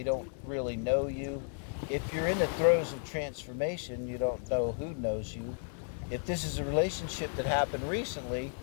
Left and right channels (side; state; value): right; silent; 55 dB below the other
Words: don't really know you. If you're in the throes of transformation, you don't know who knows you. If this is a relationship that happened recently,